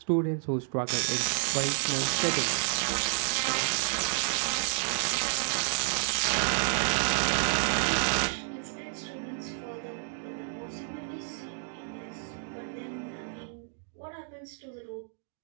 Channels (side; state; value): left; silent; digital silence